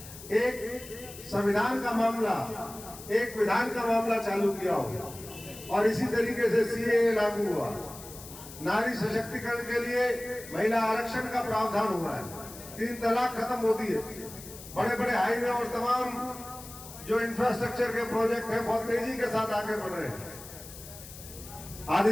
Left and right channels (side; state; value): left; noise; hiss, 15 dB below the sound